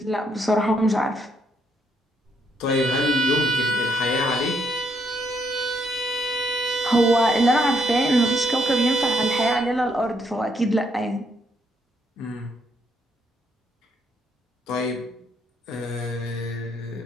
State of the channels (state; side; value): normal; both; correlation 0.74